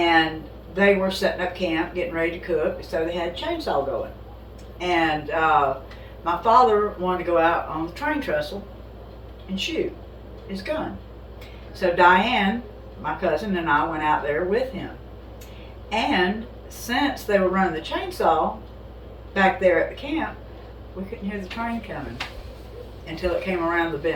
they were setting up camp, getting ready to cook, so they had a chainsaw going. And my father wanted to go out on the train trestle and shoot his gun. So Diane, my cousin, and I went out there with him. And since they were running the chainsaw back there at the camp, we couldn't hear the train coming until it came around the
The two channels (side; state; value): both; identical; correlation 1.00